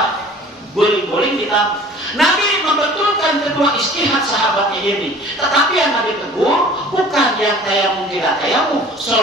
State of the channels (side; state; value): both; normal; correlation 0.47